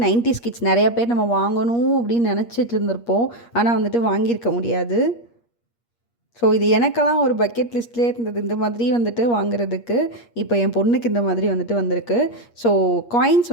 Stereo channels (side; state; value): right; late; 8.5 ms